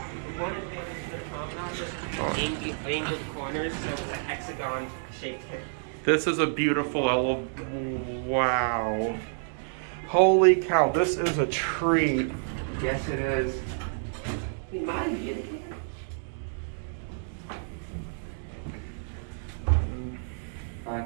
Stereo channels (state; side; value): silent; left; digital silence